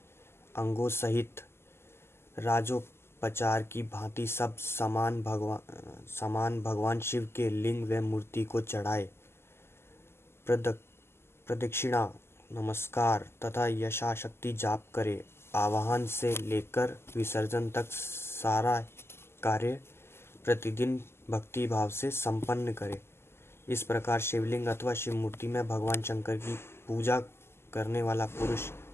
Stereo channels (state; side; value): late; right; 0.12 ms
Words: अंगों सहित राजोपचार की भांति सब सामान भगवान शिव के लिंग व मूर्ति को चढ़ाए। प्रदक्षिणा, नमस्कार तथा यथाशक्ति जाप करे। आवाहन से लेकर विसर्जन तक सारा कार्य प्रतिदिन भक्ति भाव से संपन्न करे। इस प्रकार शिवलिंग अथवा शिव मूर्ति में भगवान शंकर की पूजा करने वाला पुरुष